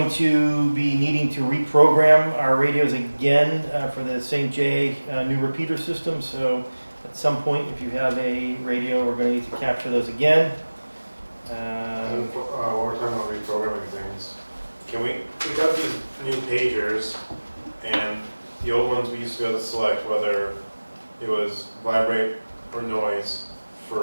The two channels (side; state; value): both; inverted; correlation -1.00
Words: to be needing to reprogram our radios again for the St. J new repeater system. So at some point, if you have a radio, we're going to need to capture those again. While we're talking about reprogramming things, we got these new pagers, and the old ones we used to be able to select whether it was vibrate or noise